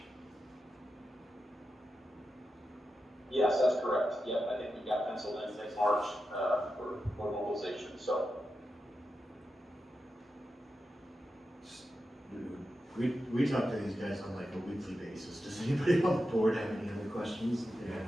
Yes, that's correct. Yep, I think we've got penciled in next March for mobilization. So We talk to these guys on like a weekly basis. Does anybody on the board have any other questions? Yeah.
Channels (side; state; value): both; normal; correlation 0.89